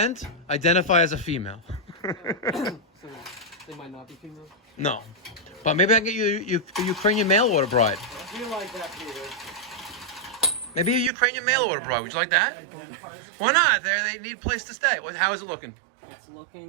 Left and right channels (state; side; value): drops out; left; at 11.1 s